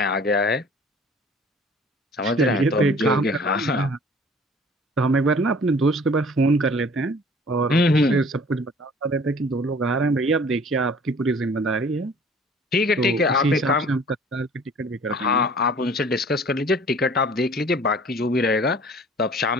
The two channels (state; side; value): normal; both; correlation 0.50